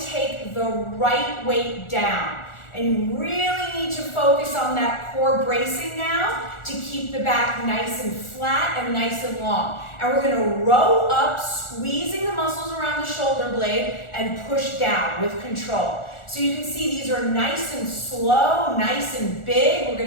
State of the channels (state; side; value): late; right; 1.4 ms